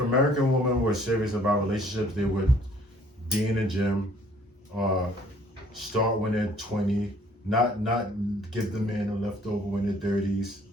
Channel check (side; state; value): both; normal; correlation 0.59